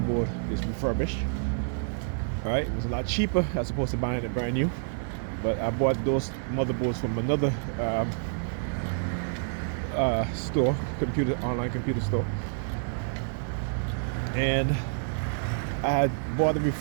is refurbished. All right? It was a lot cheaper as opposed to buying it brand new. But I bought those motherboards from another store, online computer store, and I had bought a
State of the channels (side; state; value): left; silent; digital silence